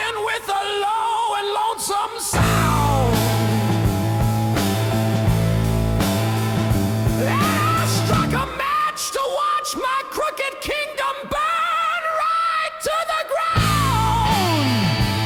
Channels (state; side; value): identical; both; correlation 1.00